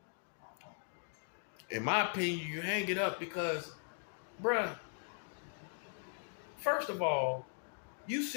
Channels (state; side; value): silent; right; digital silence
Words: In my opinion, you hang it up because, bruh, first of all, you